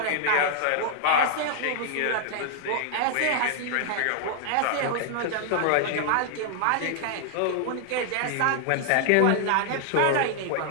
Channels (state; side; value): different; both; correlation -0.01